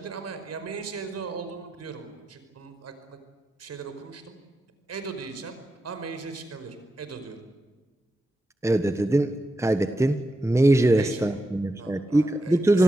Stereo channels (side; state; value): both; normal; correlation 0.88